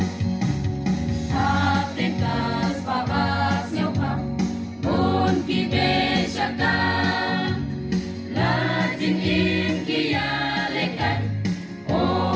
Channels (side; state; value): both; identical; correlation 1.00